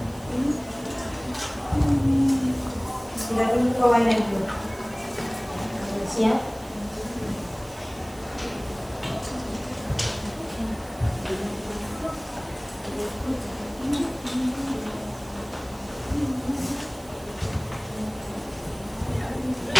Sudah dulu kawannya dulu. Siap?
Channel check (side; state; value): right; noise; hiss, 21 dB below the sound